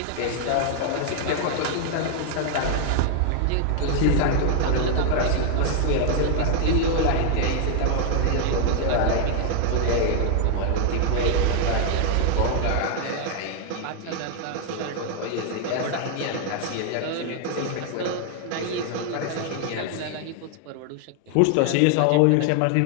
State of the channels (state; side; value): different; both; correlation 0.00